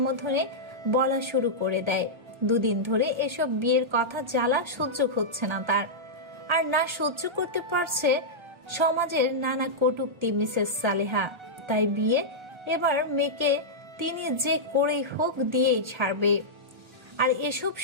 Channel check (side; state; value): left; late; 1.3 ms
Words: বলা শুরু করে দেয়। দুদিন ধরে এসব বিয়ের কথা জ্বালা সহ্য হচ্ছে না তার, আর না সহ্য করতে পারছে সমাজের নানা কটূক্তি মিসেস সালেহা। তাই বিয়ে এবার মেয়েকে তিনি যে করেই হোক দিয়েই ছাড়বে। আর এসব